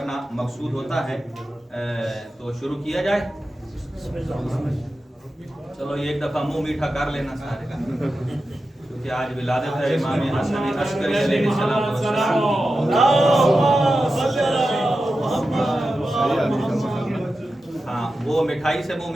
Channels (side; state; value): both; normal; correlation 0.92